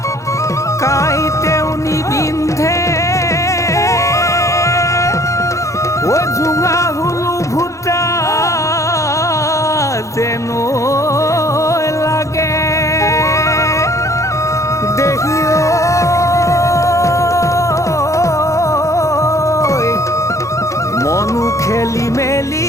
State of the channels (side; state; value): right; late; 0.15 ms